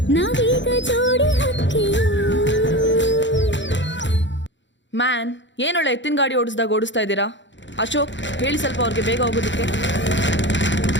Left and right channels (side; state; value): right; late; 0.54 ms